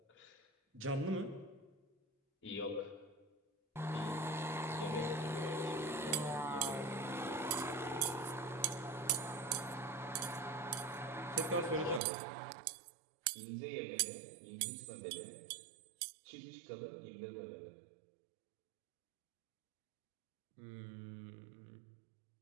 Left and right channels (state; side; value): drops out; left; at 12.0 s